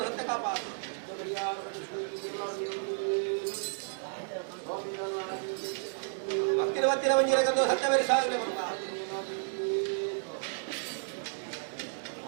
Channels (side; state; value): left; silent; digital silence